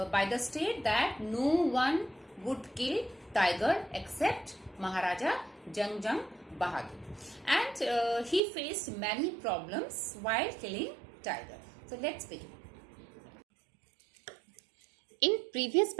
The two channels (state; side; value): drops out; left; at 8.4 s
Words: by the state that no one would kill tiger except Maharaja Jang Bahadur. And he faced many problems while killing tiger. So let's begin. In previous